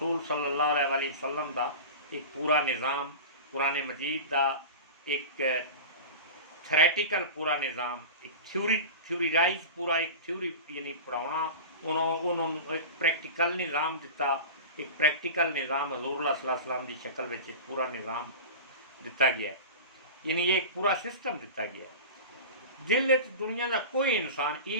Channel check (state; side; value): inverted; both; correlation -0.30